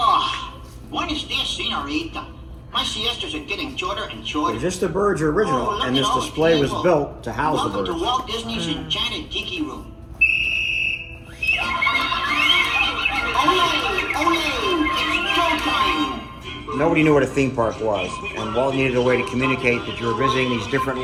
buenos dias, senorita. My siestas are getting shorter and shorter. So just the birds are original, and this display was built to house the birds. Welcome to Walt Disney's Enchanted Tiki Room. It's showtime! Nobody knew what a theme park was, and Walt needed a way to communicate that you were visiting these different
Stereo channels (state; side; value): identical; both; correlation 1.00